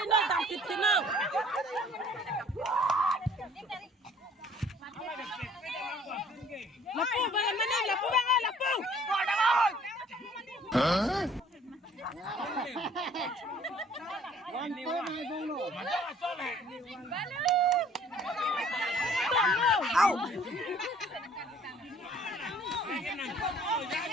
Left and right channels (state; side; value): normal; both; correlation 0.55